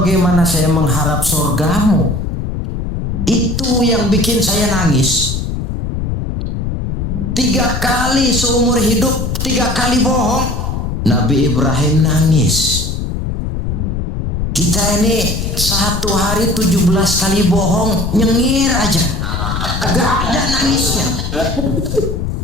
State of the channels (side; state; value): left; noise; rumble, 3 dB below the sound